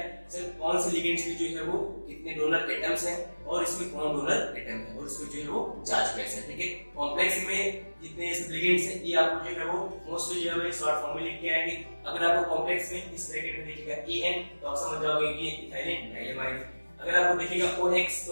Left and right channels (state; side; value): inverted; both; correlation -1.00